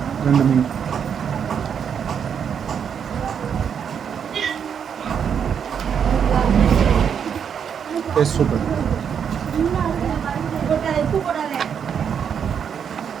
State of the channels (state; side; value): quieter; left; 7.6 dB